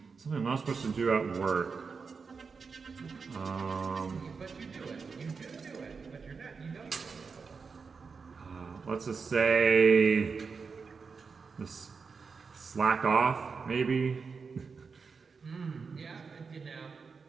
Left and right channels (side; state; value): left; quieter; 5.1 dB